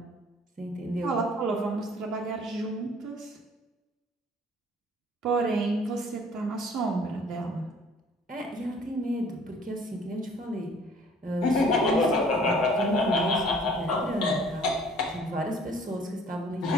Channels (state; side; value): normal; both; correlation 0.54